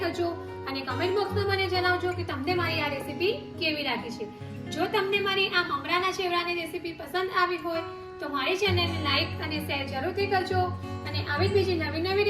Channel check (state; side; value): identical; both; correlation 1.00